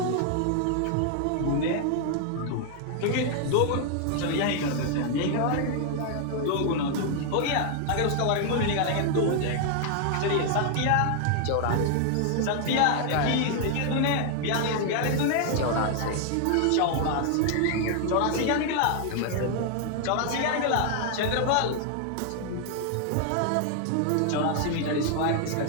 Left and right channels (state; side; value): different; both; correlation 0.00